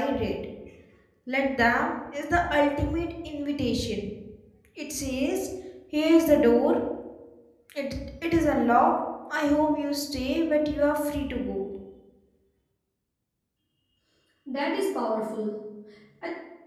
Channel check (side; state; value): both; identical; correlation 1.00